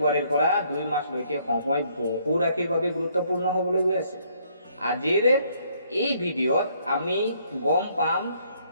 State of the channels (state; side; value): inverted; both; correlation -0.67